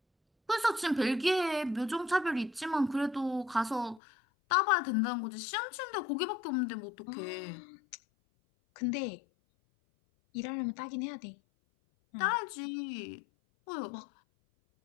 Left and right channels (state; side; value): drops out; right; at 4.0 s